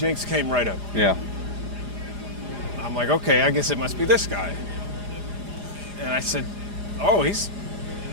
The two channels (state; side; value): late; left; 4.9 ms